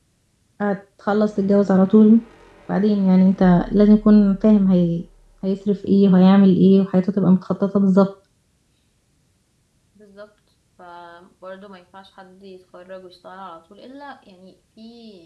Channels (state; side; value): identical; both; correlation 1.00